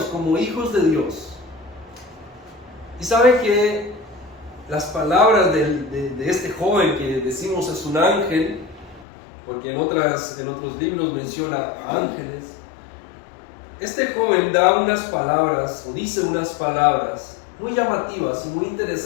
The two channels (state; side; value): drops out; right; at 9.1 s